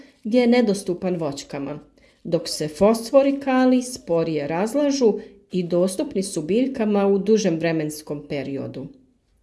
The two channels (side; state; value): both; identical; correlation 1.00